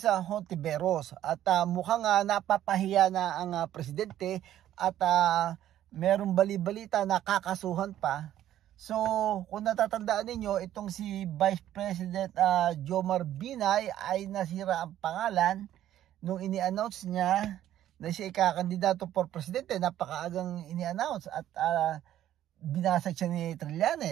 Hontiveros. At mukhang napapahiya na ang presidente at merong bali-balita na kakasuhan pa. So, kung natatandaan ninyo, itong si Vice President Jomar Binay ay nasira ang pangalan nung ini-announce niya na siya ikakandidato for presidente. Napakaagang ini-announce at binasag siya ni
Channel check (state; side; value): quieter; left; 12.2 dB